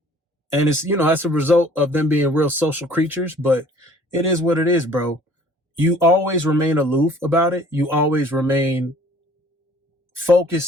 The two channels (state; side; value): normal; both; correlation 0.53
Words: And it's, that's a result of them being real social creatures, but it is what it is, bro. You always remain aloof about it. You always remain